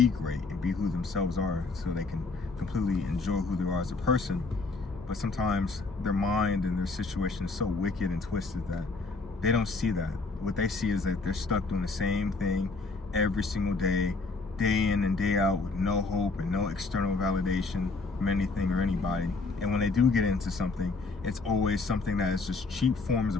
who themselves are, so they can completely enjoy who they are as a person. But sometimes their mind and their situation is so wicked and twisted that they don't see that. What they see is that they're stuck doing the same thing every single day, day in and day out, with no hope and no external validation from anything or anybody. And when they do get into something, it's always something that is just cheap forms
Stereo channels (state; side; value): quieter; right; 3.8 dB